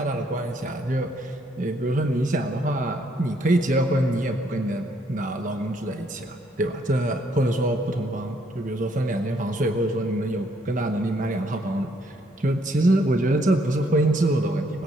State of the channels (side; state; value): both; normal; correlation 0.69